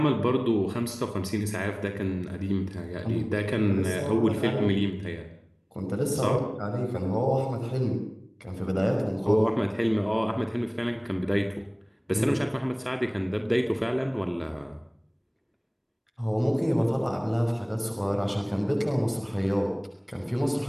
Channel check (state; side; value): identical; both; correlation 1.00